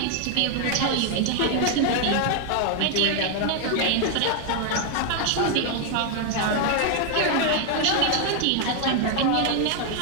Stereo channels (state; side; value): different; both; correlation 0.01